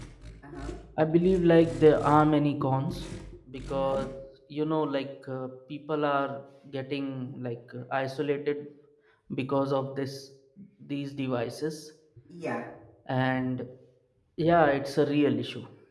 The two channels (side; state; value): both; identical; correlation 1.00